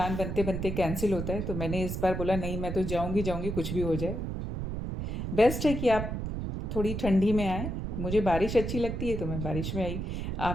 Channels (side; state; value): right; noise; rumble, 4 dB below the sound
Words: बनते बनते कैंसिल होता है, तो मैंने इस बार बोला नहीं, मैं तो जाऊँगी कुछ भी हो जाए। बेस्ट है कि आप थोड़ी ठंडी में आए। मुझे बारिश अच्छी लगती है तो मैं बारिश में आई।